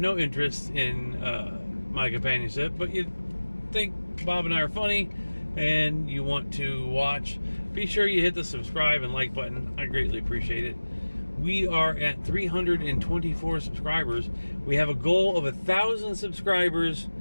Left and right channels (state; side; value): inverted; both; correlation -1.00